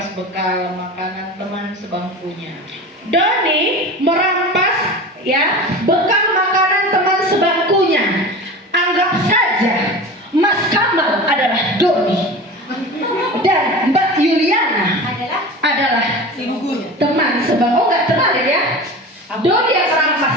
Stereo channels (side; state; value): both; normal; correlation 0.32